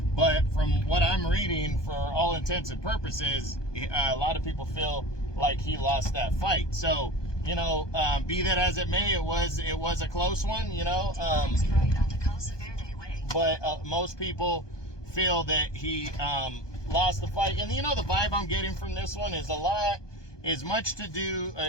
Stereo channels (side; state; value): right; late; 1.2 ms